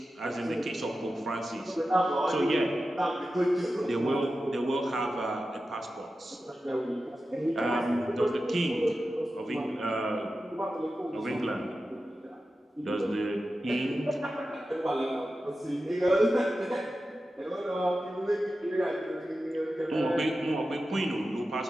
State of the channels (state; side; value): normal; both; correlation 0.92